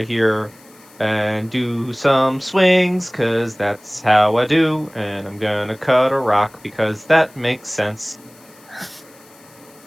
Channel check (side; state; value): left; noise; hiss, 27 dB below the sound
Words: here. and do some swings, because that's how I do. And I'm going to cut a rock, because that makes sense.